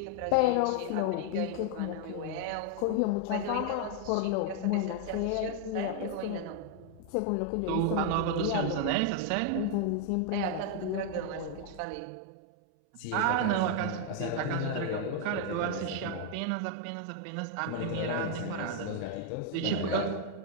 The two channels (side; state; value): both; different; correlation 0.00